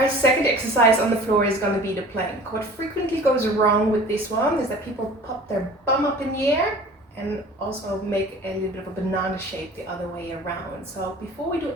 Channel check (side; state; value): both; normal; correlation 0.44